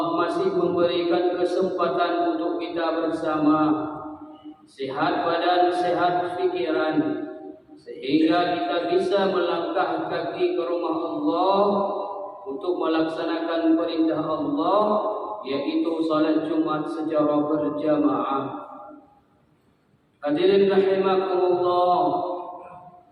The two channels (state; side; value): identical; both; correlation 1.00